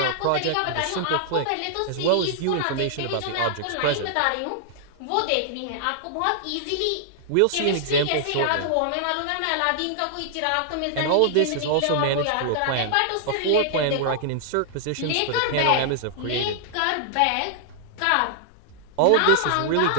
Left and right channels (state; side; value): different; both; correlation -0.01